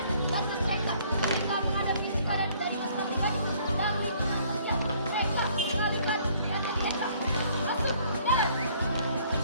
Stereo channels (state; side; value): inverted; both; correlation -0.61